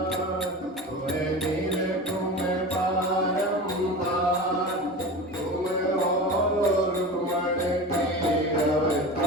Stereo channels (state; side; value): normal; both; correlation 0.30